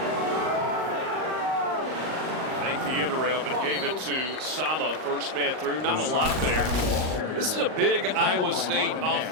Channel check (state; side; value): late; left; 38 ms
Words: End around, but gave it to Sama, first man through. Not a lot there. This is a big Iowa State